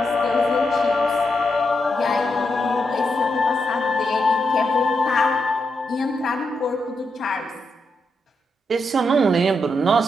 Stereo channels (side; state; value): both; normal; correlation 0.83